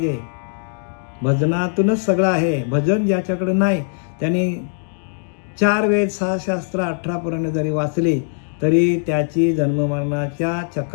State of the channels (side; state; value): right; silent; digital silence